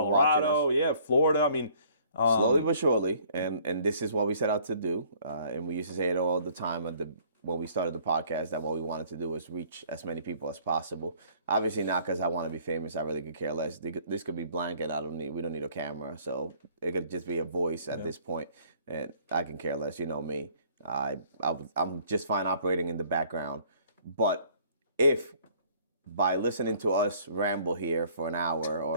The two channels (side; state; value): both; inverted; correlation -0.58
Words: watching us. Colorado, Florida. Slowly but surely, and this is what we set out to do. And we used to say it all the time when we started the podcast, that what we wanted to do was reach as many people as possible. Obviously not because I want to be famous. I really could care less. This could be blank, and we don't need a camera. So it could just be a voice at this point, and I can care less. You know me. I'm just fine operating in the background. But if by listening to us ramble here for an hour